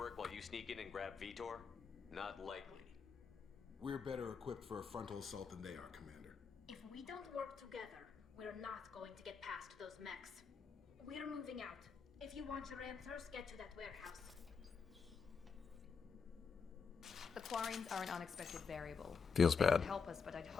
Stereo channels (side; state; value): right; quieter; 5.7 dB